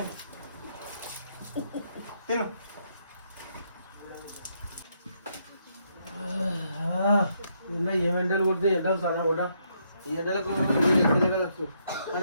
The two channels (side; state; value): both; inverted; correlation -0.75